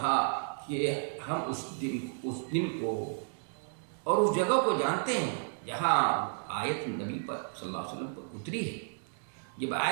کہ ہم اس دن کو اور اس جگہ کو جانتے ہیں جہاں آیت نبی پر صلی اللہ علیہ وسلم پر اتری ہے۔ جب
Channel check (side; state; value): left; silent; 56 dB below the other